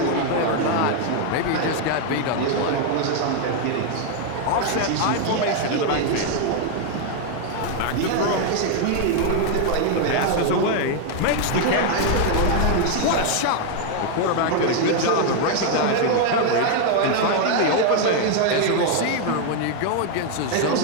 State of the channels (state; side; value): different; both; correlation 0.00